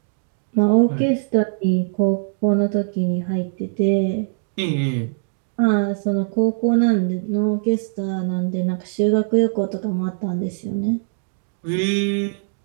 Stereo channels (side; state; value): left; silent; digital silence